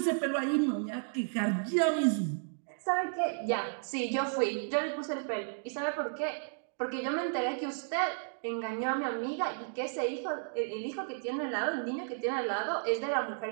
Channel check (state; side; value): silent; left; digital silence